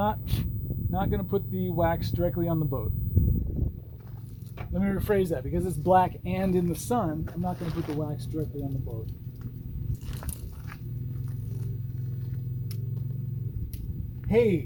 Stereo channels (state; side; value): identical; both; correlation 1.00